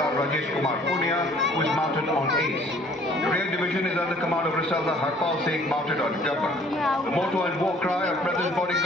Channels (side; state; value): both; normal; correlation 0.56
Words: Rajesh Kumar Punia, who is mounted on Ace. The rear division is under command of Risaldar Harpal Singh, mounted on Gabbar. The motto and war cry of President's